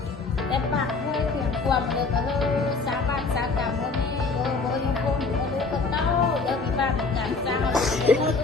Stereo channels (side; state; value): right; quieter; 4.1 dB